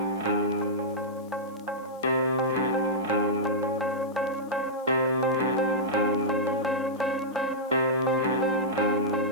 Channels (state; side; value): noise; left; hiss, 29 dB below the sound